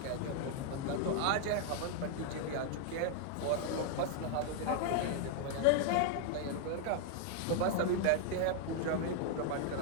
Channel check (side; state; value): both; different; correlation 0.00